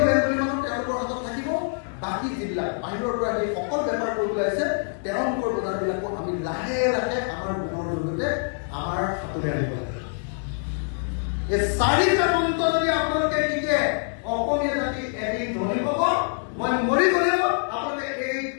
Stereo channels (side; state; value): right; silent; 62 dB below the other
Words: বেংগলী মানুহ তেওঁলোকৰ হাতত থাকিব, বাকী যিবিলাক বাহিৰৰ পৰা আহি অকল বেপাৰ কৰিবলৈ আহিছে তেওঁলোকৰ বজাৰবিলাকো আমি লাহে লাহে আমাৰ গুণৰ জৰিয়তে আমাৰ হাতলৈ আনিব লাগে। এই 4টা মন্ত্ৰ যদি আপোনালোকে শিকে, অসমীয়া জাতি এদিন ধনী হ'ব। মই মৰি গ'লেও আপোনালোকে এই